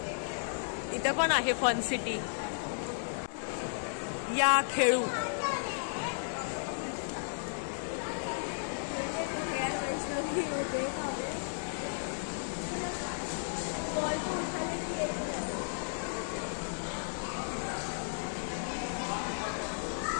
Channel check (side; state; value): right; silent; digital silence